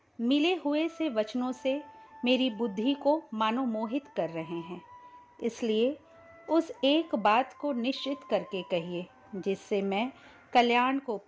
मिले हुए से वचनों से मेरी बुद्धि को मानो मोहित कर रहे हैं, इसलिए उस एक बात को निश्चित करके कहिए जिससे मैं कल्याण को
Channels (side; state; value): both; identical; correlation 1.00